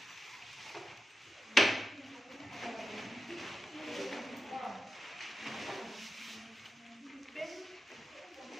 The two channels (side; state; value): both; normal; correlation 0.91